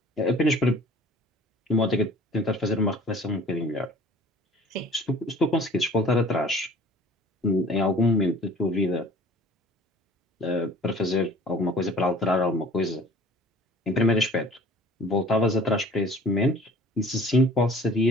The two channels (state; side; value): normal; both; correlation 0.48